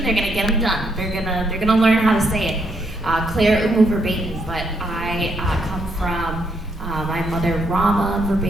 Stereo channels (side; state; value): both; normal; correlation 0.75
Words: They're gonna get them done. They're gonna learn how to say it. Claire Verbeek, but I come from my mother Rama